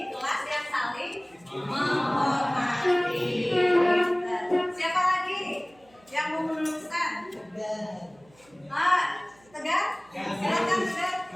kelas yang saling menghormati. Siapa lagi yang mau meneruskan? Tegar? Silakan Tegar.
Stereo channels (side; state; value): right; noise; hum, 30 dB below the sound